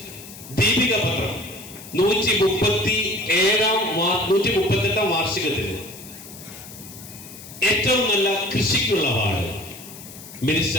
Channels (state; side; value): noise; left; hiss, 16 dB below the sound